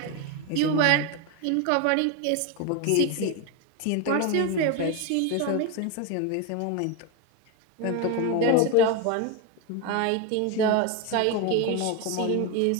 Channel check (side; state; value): both; different; correlation 0.02